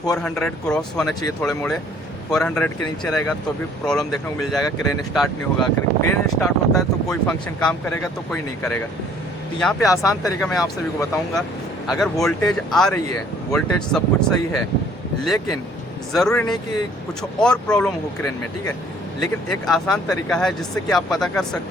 400 क्रॉस होना चाहिए, थोड़े मोड़े 400 के नीचे रहेगा तो भी प्रॉब्लम देखने को मिल जाएगा, क्रेन स्टार्ट नहीं होगा। क्रेन स्टार्ट होता है तो कोई फंक्शन काम करेगा तो कोई नहीं करेगा। तो यहाँ पे आसान तरीका मैं आप सभी को बताऊँगा। अगर वोल्टेज आ रही है, वोल्टेज सब कुछ सही है, लेकिन ज़रूरी नहीं कि कुछ और प्रॉब्लम हो क्रेन में, ठीक है। लेकिन एक आसान तरीका है जिससे कि आप पता कर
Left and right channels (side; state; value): both; normal; correlation 0.58